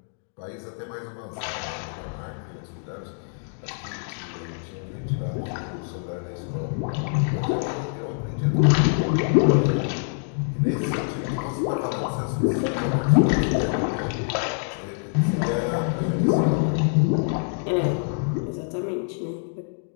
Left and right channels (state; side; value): silent; right; 61 dB below the other